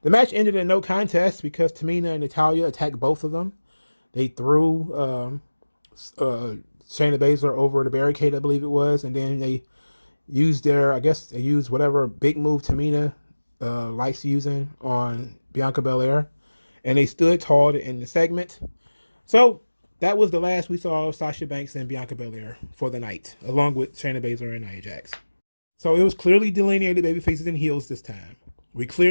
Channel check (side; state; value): both; inverted; correlation -1.00